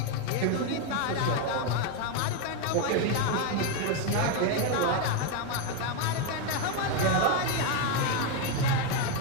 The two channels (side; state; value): both; different; correlation 0.02